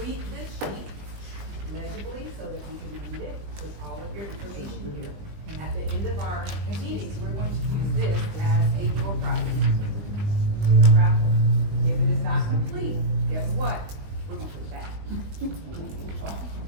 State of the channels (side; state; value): left; late; 20 ms